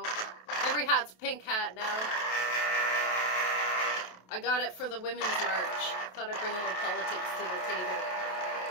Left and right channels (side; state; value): right; late; 27 ms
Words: Every hat's pink hat now. I got it for the Women's March. Thought I'd bring a little politics to the table.